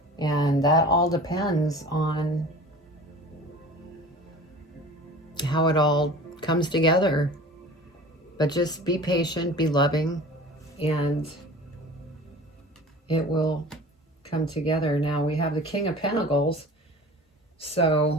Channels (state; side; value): normal; both; correlation 0.40